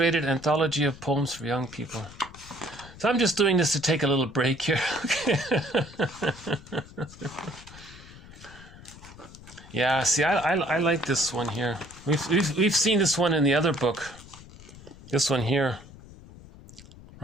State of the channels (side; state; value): left; noise; rumble, 19 dB below the sound